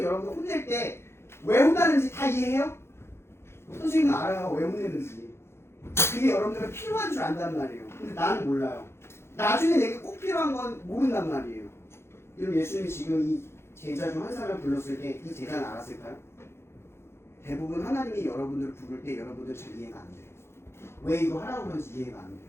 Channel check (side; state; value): right; late; 0.12 ms